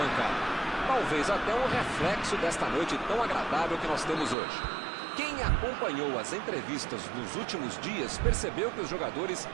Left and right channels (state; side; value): drops out; left; at 4.4 s